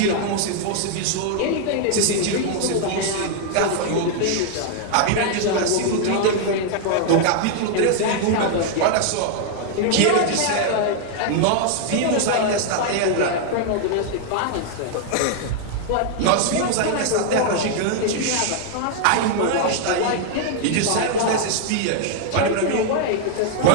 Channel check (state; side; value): different; both; correlation 0.00